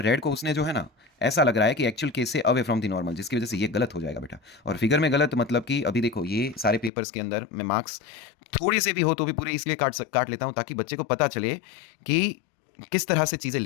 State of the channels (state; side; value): drops out; right; at 6.9 s